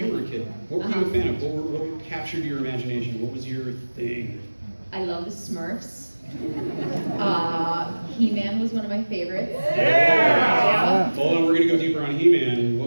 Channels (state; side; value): inverted; both; correlation -1.00